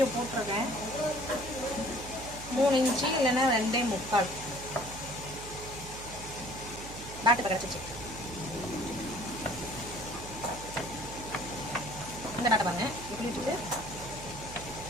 போட்டிருக்கேன். 3 இன்ச்சு இல்லைன்னா 2.25 டாட்டு கிடச்சிச்சு. இந்த டாட்டை பாருங்க, இப்படி வச்சுட்டு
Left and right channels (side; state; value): right; noise; hum, 12 dB below the sound